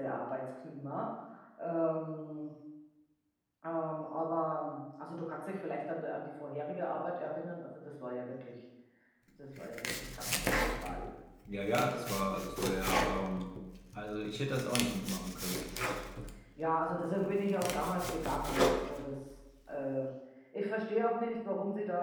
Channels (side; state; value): both; identical; correlation 1.00